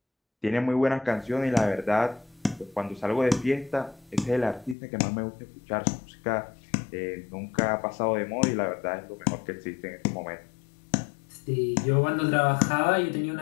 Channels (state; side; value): drops out; right; at 4.8 s